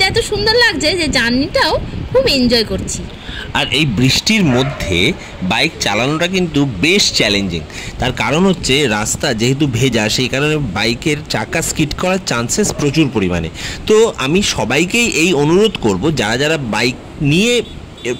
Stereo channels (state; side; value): identical; both; correlation 1.00